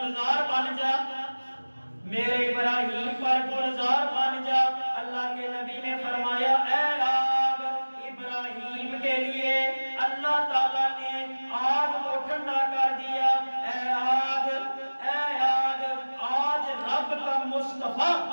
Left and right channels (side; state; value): both; inverted; correlation -1.00